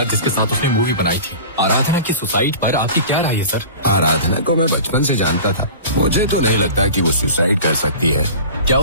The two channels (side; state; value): both; inverted; correlation -0.37